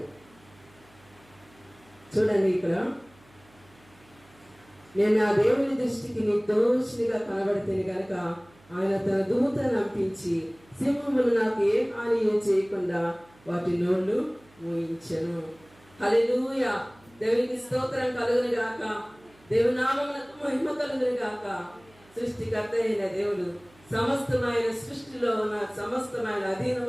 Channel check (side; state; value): right; noise; hum, 28 dB below the sound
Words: చూడండి, ఇక్కడ నేను ఆ దేవుని దృష్టికి నిర్దోషిగా కనబడితేనే కనుక ఆయన తన దూతను పంపించి సింహములు నాకు ఏ హాని చేయకుండా వాటి నోళ్ళు మూయించెను. హల్లెలూయా. దేవునికి స్తోత్రం కలుగును గాక. దేవుని నామమునకు మహిమ కలుగును గాక. సృష్టికర్త అయిన దేవుడు సమస్తమైన సృష్టిలో ఉన్న సమస్తమైన